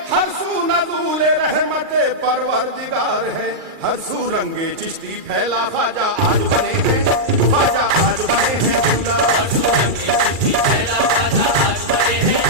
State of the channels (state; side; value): late; left; 2.4 ms